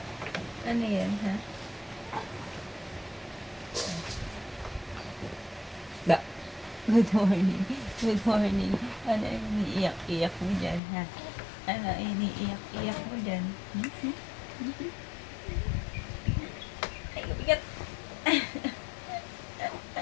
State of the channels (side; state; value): right; drops out; at 10.8 s